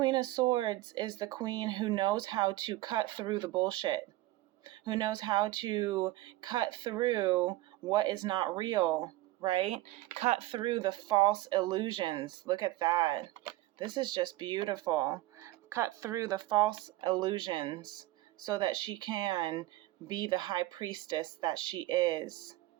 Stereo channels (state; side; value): quieter; left; 17.7 dB